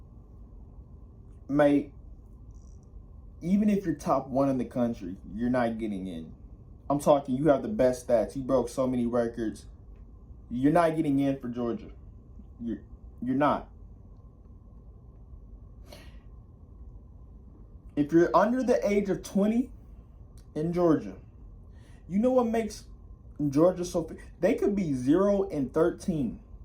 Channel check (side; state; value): both; identical; correlation 1.00